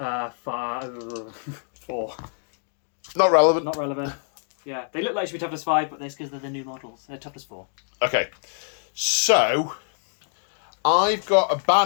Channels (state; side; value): silent; right; digital silence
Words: Not relevant. Not relevant. Yeah, they look like they should be toughness 5, but that's because they're the new models. They're toughness 4. Okay. So, I've got a